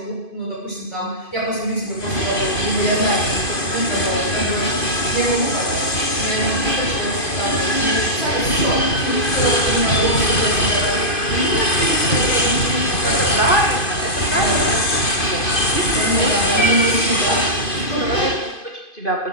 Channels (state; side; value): late; right; 2.5 ms